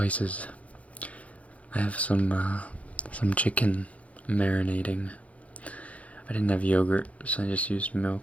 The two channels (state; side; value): late; right; 0.066 ms